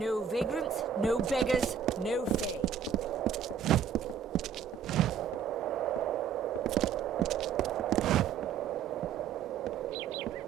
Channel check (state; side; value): quieter; left; 7.7 dB